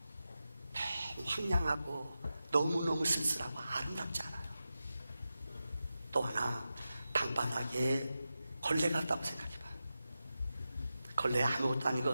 너무 황량하고 너무너무 쓸쓸하고 아름답지 않아요. 또 하나, 방바닥에 걸레가 없다고 생각해봐요. 걸레 아무것도 아닌 것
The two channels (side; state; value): both; inverted; correlation -0.92